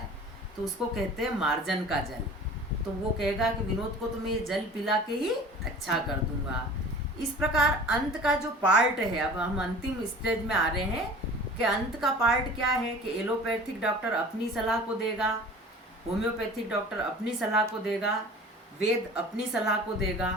तो उसको कहते हैं मार्जन का जल। तो वो कहेगा कि विनोद को तो मैं ये जल पिला के ही अच्छा कर दूंगा। इस प्रकार अंत का जो पार्ट है, अब हम अंतिम स्टेज में आ रहे हैं कि अंत का पार्ट क्या है कि एलोपैथिक डॉक्टर अपनी सलाह को देगा, होम्योपैथिक डॉक्टर अपनी सलाह को देगा, वेद अपनी सलाह को देगा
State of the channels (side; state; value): both; normal; correlation 0.42